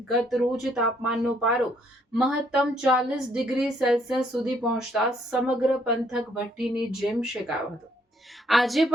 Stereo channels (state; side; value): normal; both; correlation 0.67